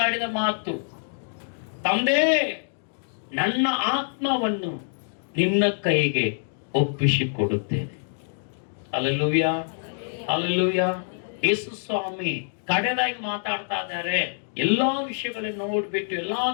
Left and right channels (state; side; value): silent; right; digital silence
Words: ಮಾತು, ತಂದೆ ನನ್ನ ಆತ್ಮವನ್ನು ನಿನ್ನ ಕೈಗೆ ಒಪ್ಪಿಸಿಕೊಡುತ್ತೇನೆ. Hallelujah, hallelujah. ಯೇಸು ಸ್ವಾಮಿ ಕಡೆದಾಗಿ ಮಾತಾಡ್ತಾ ಇದ್ದಾರೆ. ಎಲ್ಲಾ ವಿಷಯಗಳನ್ನು ನೋಡ್ಬಿಟ್ಟು ಎಲ್ಲಾ